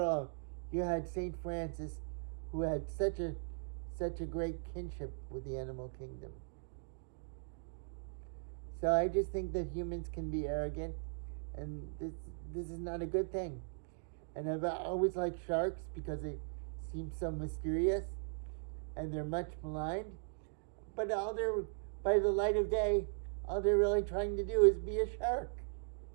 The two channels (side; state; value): left; silent; digital silence